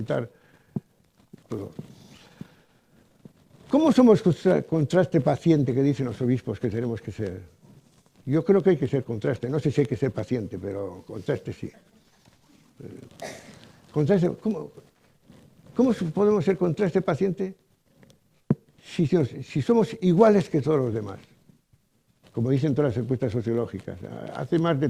todo. ¿Cómo somos contraste paciente que dicen los obispos que tenemos que ser? Yo creo que hay que ser contraste. No sé si hay que ser paciente, pero contraste sí. Contraste, ¿cómo podemos ser contraste paciente si somos iguales que todos los demás? Como dicen todas las encuestas sociológicas. Hace más de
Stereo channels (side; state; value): both; identical; correlation 1.00